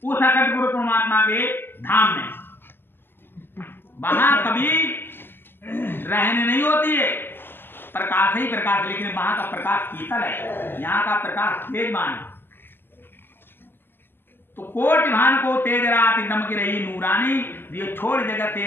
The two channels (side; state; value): right; late; 0.10 ms